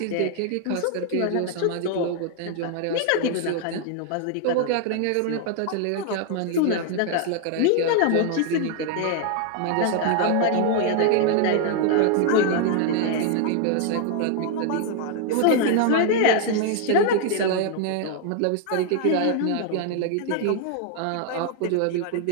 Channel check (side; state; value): both; different; correlation 0.00